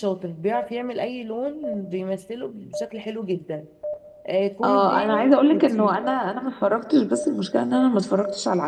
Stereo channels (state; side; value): identical; both; correlation 1.00